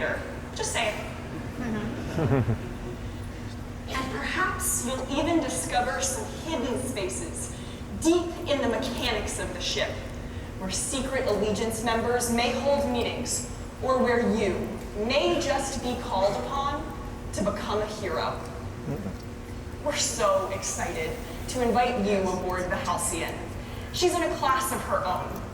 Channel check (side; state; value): both; identical; correlation 1.00